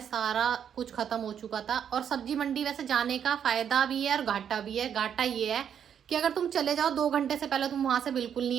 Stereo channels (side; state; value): left; quieter; 8.5 dB